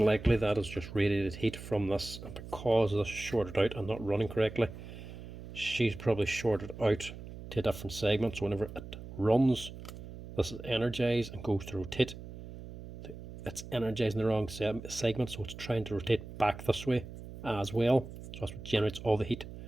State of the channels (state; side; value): noise; right; hum, 12 dB below the sound